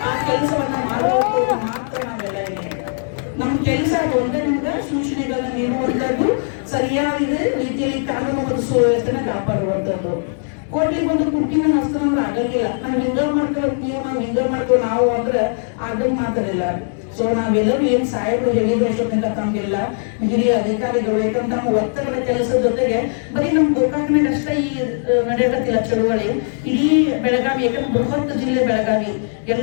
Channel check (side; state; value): right; silent; digital silence